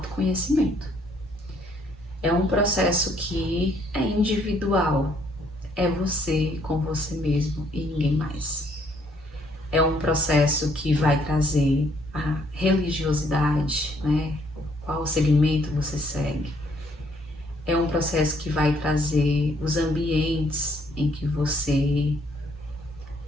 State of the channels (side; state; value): both; normal; correlation 0.67